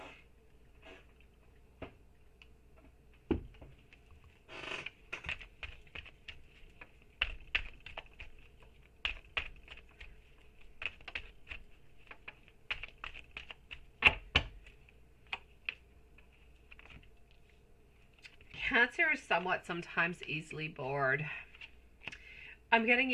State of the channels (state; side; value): identical; both; correlation 1.00